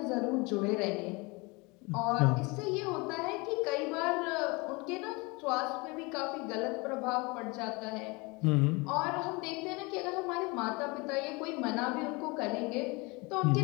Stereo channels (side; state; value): right; quieter; 26.7 dB